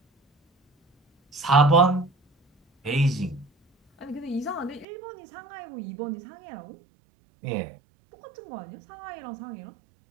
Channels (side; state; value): left; drops out; at 4.9 s